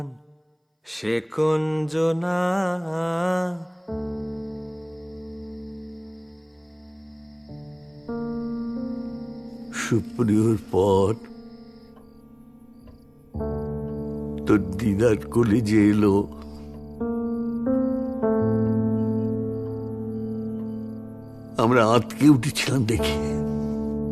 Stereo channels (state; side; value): identical; both; correlation 1.00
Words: সে কুঞ্জনা, সুপ্রিয়র পর তোর দিদার কলেজে এলো। আমরা আঁতকে উঠেছিলাম দেখে।